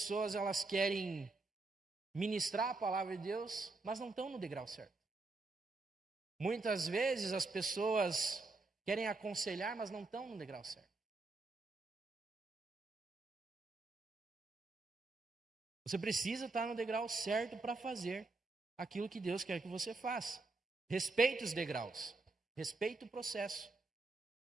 elas querem ministrar a palavra de Deus, mas não estão no degrau certo. Muitas vezes as pessoas querem aconselhar, mas não estão no degrau certo. Você precisa estar no degrau certo para fazer aquilo que Deus quer que você faça. Respeite os degraus, respeite o processo.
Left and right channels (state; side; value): quieter; left; 3.6 dB